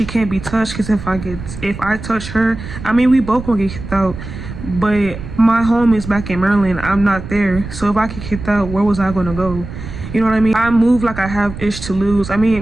can't be touched, because if I touch her, I mean, we both gonna get kicked out, but my home is back in Maryland. I'm not there, so if I get kicked out, where was I gonna go? You know what I mean? I move like I have ish to lose. I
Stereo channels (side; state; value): right; noise; rumble, 10 dB below the sound